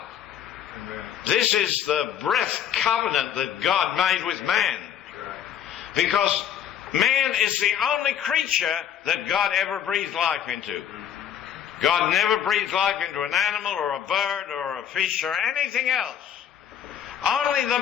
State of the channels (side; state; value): right; quieter; 9.6 dB